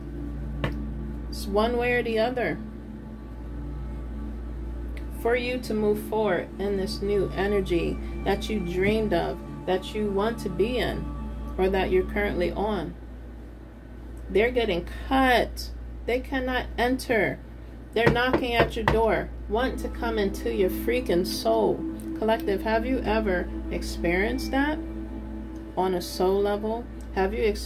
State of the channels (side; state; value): both; identical; correlation 1.00